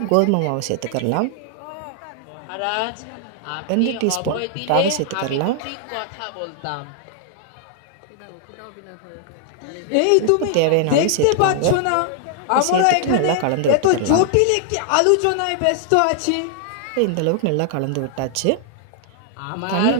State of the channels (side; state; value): both; different; correlation 0.00